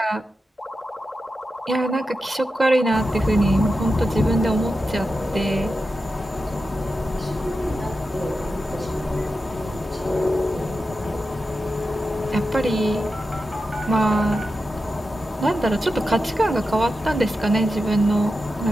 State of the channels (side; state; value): both; normal; correlation 0.90